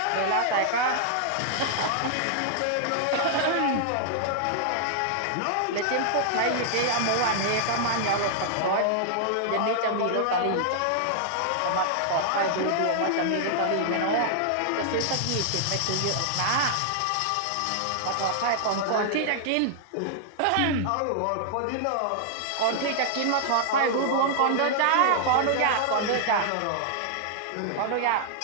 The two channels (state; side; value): different; both; correlation -0.01